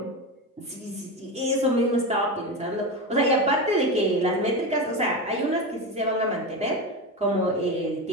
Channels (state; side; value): normal; both; correlation 0.19